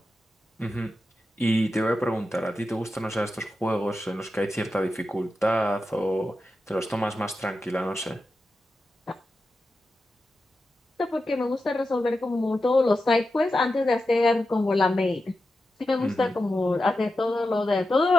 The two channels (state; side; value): normal; both; correlation 0.90